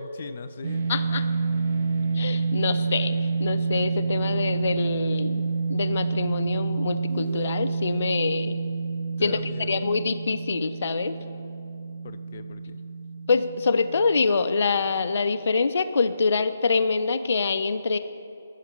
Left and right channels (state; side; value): inverted; both; correlation -0.81